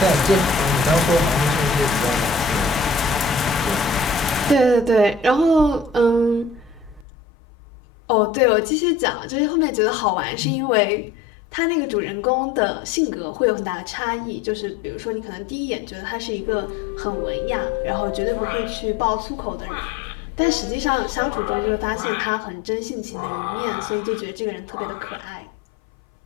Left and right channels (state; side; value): drops out; right; at 7.1 s